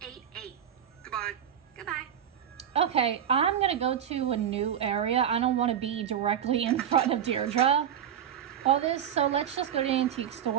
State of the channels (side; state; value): left; quieter; 9.3 dB